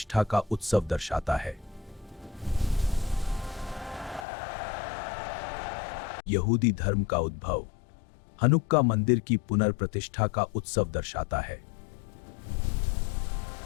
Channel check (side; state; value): right; drops out; at 4.2 s